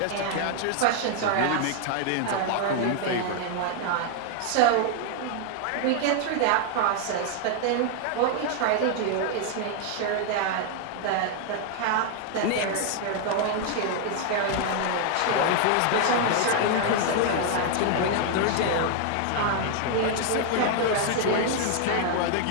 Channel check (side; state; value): both; different; correlation 0.00